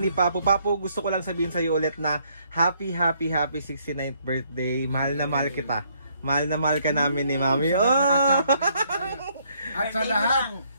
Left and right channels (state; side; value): inverted; both; correlation -0.69